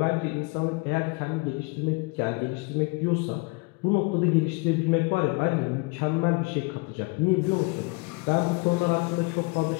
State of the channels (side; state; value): right; quieter; 27.1 dB